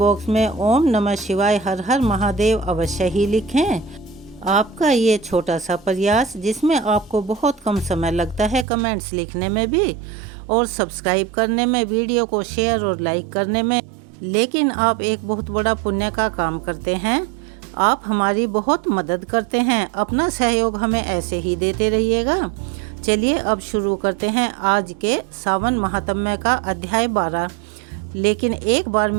में ओम नमः शिवाय हर हर महादेव अवश्य ही लिखें। आपका ये छोटा सा प्रयास, जिसमें आपको बहुत कम समय लगता है कमेंट्स लिखने में भी और सब्सक्राइब करने में, वीडियो को शेयर और लाइक करने में, लेकिन आप एक बहुत बड़ा पुण्य का काम करते हैं। आप हमारी बहुत मदद करते हैं। अपना सहयोग हमें ऐसे ही देते रहिएगा। चलिए अब शुरू करते हैं आज के सावन महात्म्य का अध्याय 12। लेकिन एक बार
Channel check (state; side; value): drops out; left; at 8.7 s